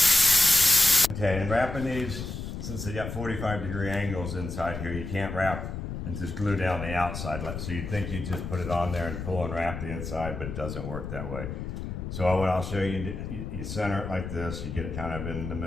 Okay, and wrapping these, since they got 45-degree angles inside here, you can't wrap and just glue down the outside. So you'd think you just put it on there and pull and wrap the inside, but it doesn't work that way. So what I'll show you, you center it like this, you get it kind of in the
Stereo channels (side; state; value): left; noise; rumble, 6 dB below the sound